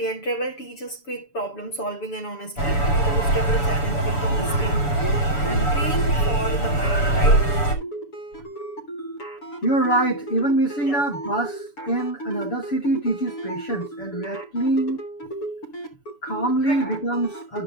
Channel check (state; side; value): late; right; 7.0 ms